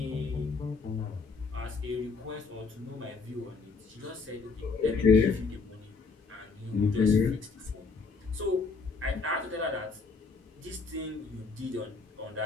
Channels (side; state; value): right; quieter; 4.4 dB